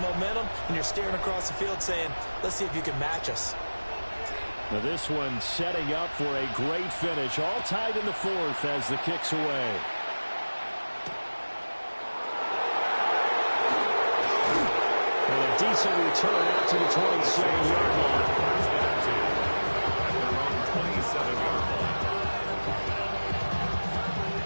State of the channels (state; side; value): inverted; both; correlation -1.00